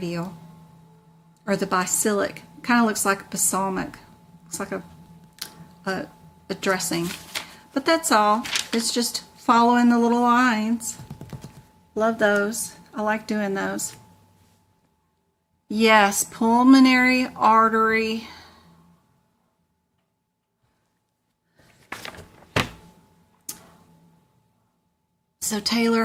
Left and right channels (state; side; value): identical; both; correlation 1.00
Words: Or the basilic. Kind of looks like a balsamic. Looks like a dressing. But that's all. It's just following the little lines. Love those. I like doing those. Yes, pulmonary artery. So Taylor,